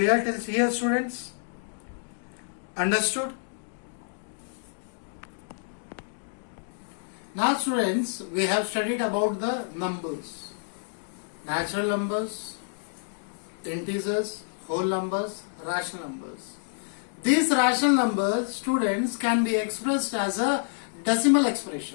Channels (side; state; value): right; silent; digital silence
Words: till here, students? Understood? Now, students, we have studied about the numbers. Natural numbers, integers, whole numbers, rational numbers. These rational numbers, students, can be expressed as a decimal